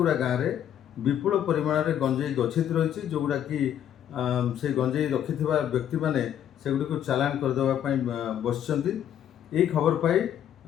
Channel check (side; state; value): right; quieter; 10.2 dB